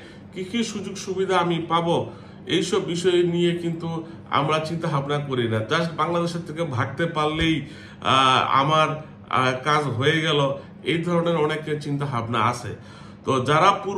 কি কি সুযোগ সুবিধা আমি পাবো, এইসব বিষয় নিয়ে কিন্তু আমরা চিন্তা ভাবনা করি না। জাস্ট বাংলাদেশের থেকে ভাগতে পারলেই আমার কাজ হয়ে গেল, এই ধরনের অনেকের চিন্তা ভাবনা আছে। তো যারা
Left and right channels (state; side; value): identical; both; correlation 1.00